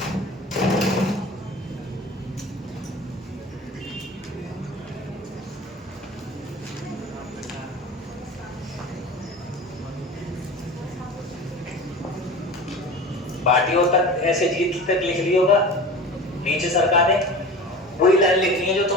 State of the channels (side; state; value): both; normal; correlation 0.35